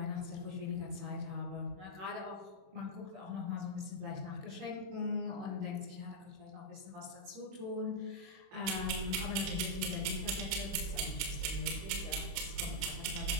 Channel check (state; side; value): late; left; 31 ms